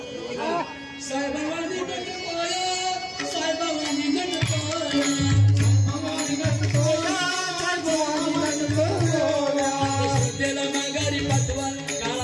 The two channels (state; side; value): identical; both; correlation 1.00